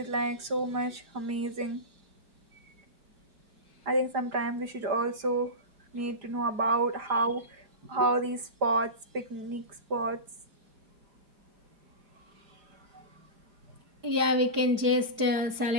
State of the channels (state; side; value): late; left; 4.9 ms